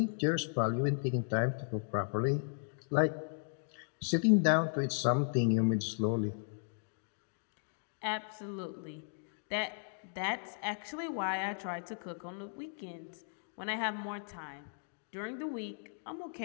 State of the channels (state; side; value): silent; right; digital silence